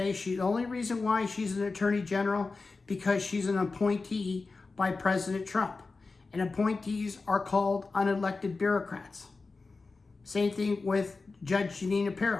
the only reason why she's an attorney general, because she's an appointee by President Trump. And appointees are called unelected bureaucrats. Same thing with Judge Janina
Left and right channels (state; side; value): quieter; right; 3.9 dB